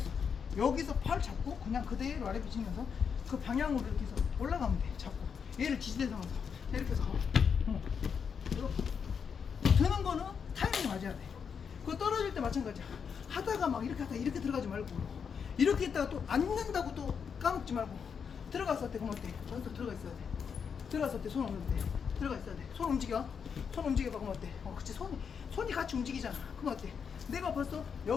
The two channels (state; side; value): quieter; right; 6.6 dB